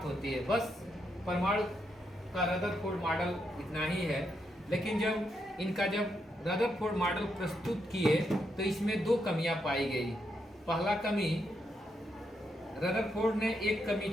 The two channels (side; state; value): both; normal; correlation 0.80